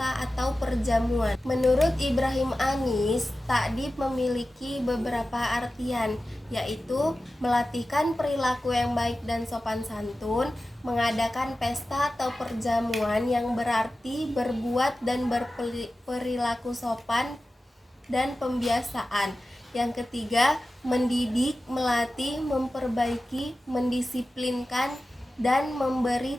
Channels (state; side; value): normal; both; correlation 0.95